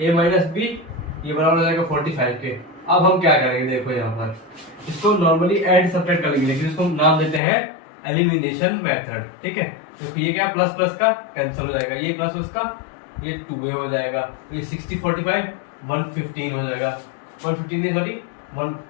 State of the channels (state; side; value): drops out; right; at 7.4 s